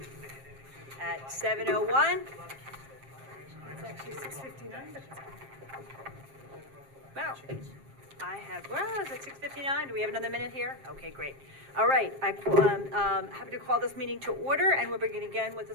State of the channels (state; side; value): late; left; 7.5 ms